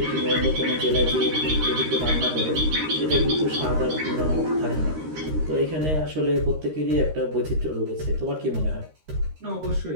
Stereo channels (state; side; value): late; left; 13 ms